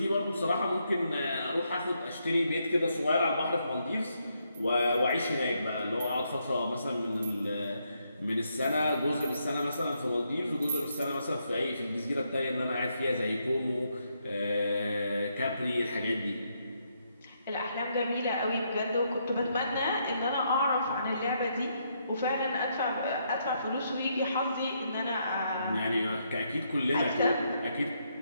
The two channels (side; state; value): both; inverted; correlation -0.77